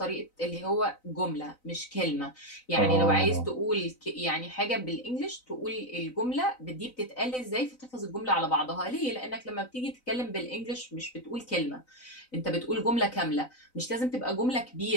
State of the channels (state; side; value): late; right; 3.9 ms